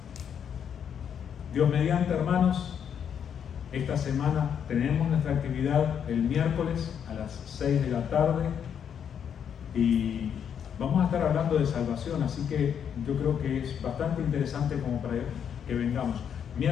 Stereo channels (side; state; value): right; quieter; 8.2 dB